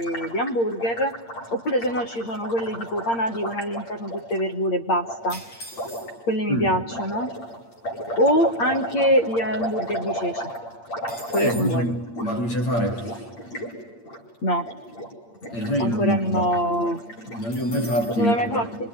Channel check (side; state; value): right; late; 8.7 ms